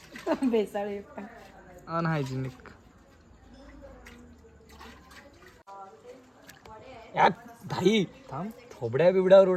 बेसाळ पण अनहायजिनिक. भाई थांब, थोबड्या बिबड्यावर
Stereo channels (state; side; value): identical; both; correlation 1.00